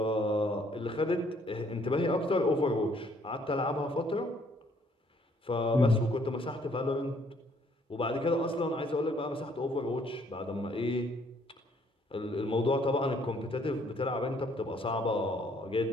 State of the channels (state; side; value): normal; both; correlation 0.64